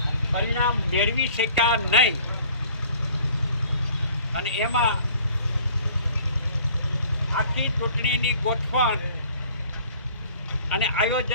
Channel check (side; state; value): both; inverted; correlation -0.52